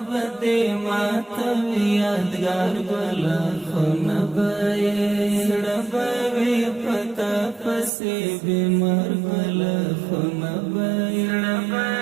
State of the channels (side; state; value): left; drops out; at 7.9 s